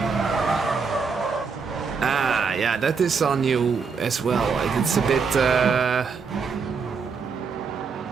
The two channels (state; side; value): quieter; left; 5.4 dB